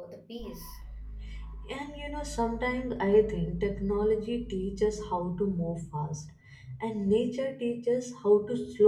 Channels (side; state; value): both; identical; correlation 1.00